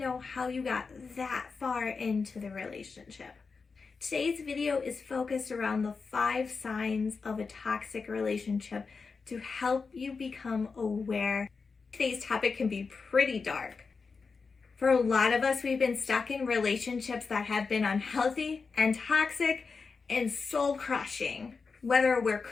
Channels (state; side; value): quieter; right; 4.8 dB